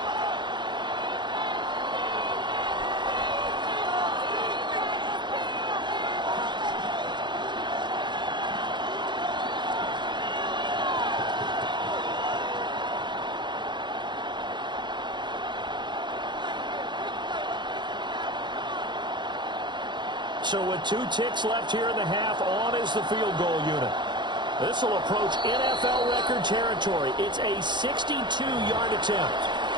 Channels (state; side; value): late; left; 0.22 ms